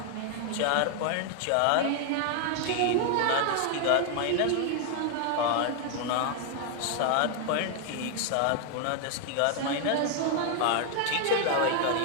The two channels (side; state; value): both; different; correlation 0.00